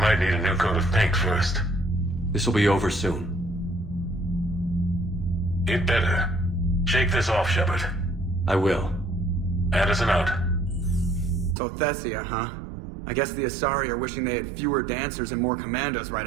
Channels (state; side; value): drops out; left; at 11.6 s